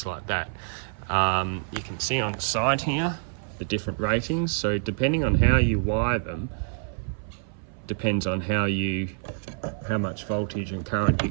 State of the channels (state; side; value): silent; left; 57 dB below the other